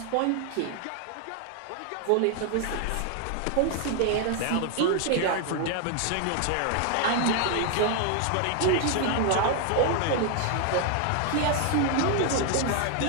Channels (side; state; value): both; different; correlation 0.00